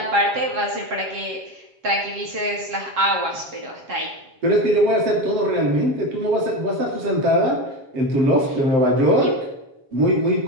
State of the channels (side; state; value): left; late; 7.3 ms